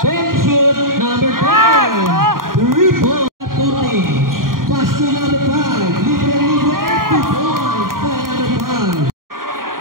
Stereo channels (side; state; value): left; late; 0.91 ms